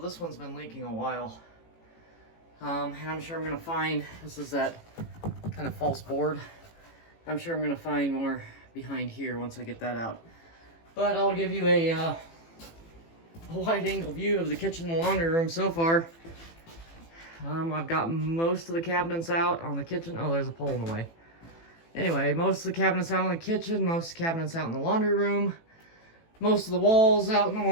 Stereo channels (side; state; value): right; late; 18 ms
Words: one's been leaking a while. And I'm sure I'm gonna find, this is that kind of false board. I'm sure I'm gonna find more behind here once I get that out. But I'll give you a wide angle view of the kitchen and laundry room so far. I've got most of the cabinets out on the kitchen. Oh, there's a pole in the way. Anyway, most of the cabinets out in the kitchen, most of the cabinets out in the laundry room, most of the walls out in the